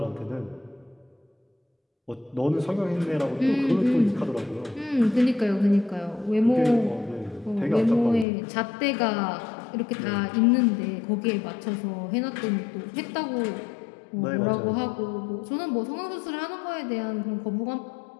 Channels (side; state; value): right; drops out; at 8.2 s